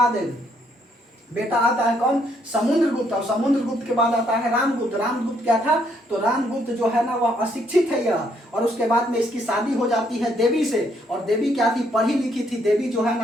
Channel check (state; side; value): normal; both; correlation 0.71